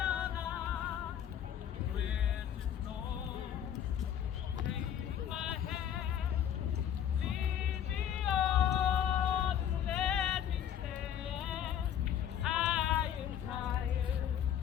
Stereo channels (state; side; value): quieter; right; 9.7 dB